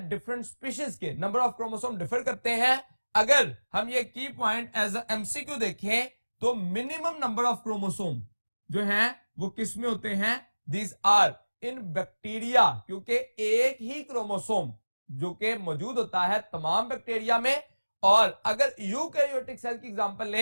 डिफरेंट स्पीशीज के नंबर ऑफ क्रोमोसोम डिफर करते हैं। अगर हम ये की पॉइंट एज अ एमसीक्यू देखें तो मिनिमम नंबर ऑफ क्रोमोसोम जो है वो किस में होते हैं? दीज आर इन बैक्टीरिया, क्योंकि एक ही क्रोमोसोम जो कि मौजूद होता है तमाम बैक्टीरिया में। और अगर यूकैरियोटिक सेल की एग्जांपल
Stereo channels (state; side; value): inverted; both; correlation -1.00